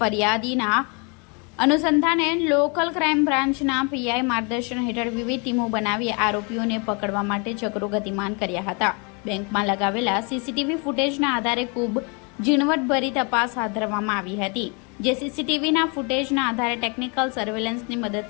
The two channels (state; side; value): quieter; right; 33.1 dB